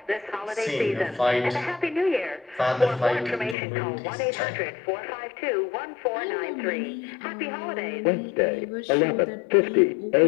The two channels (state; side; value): drops out; right; at 3.6 s